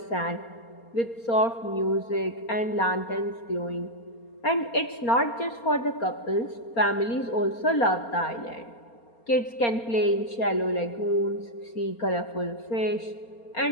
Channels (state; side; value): late; right; 4.3 ms